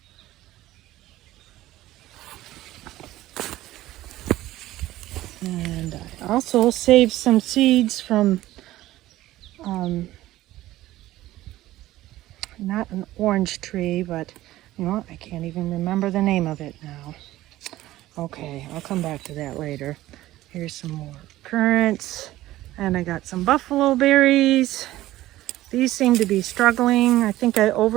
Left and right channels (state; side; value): quieter; left; 15.7 dB